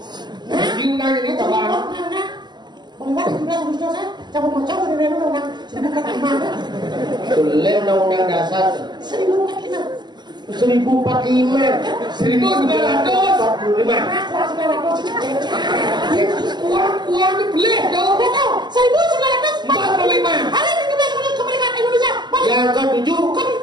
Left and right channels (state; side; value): late; left; 0.21 ms